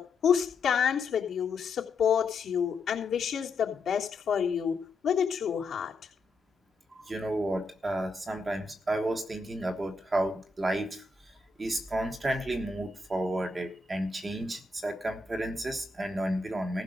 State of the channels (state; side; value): quieter; right; 3.2 dB